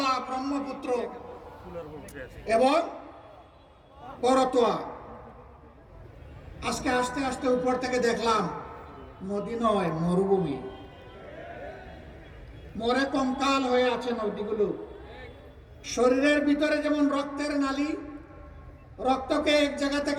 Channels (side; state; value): both; identical; correlation 1.00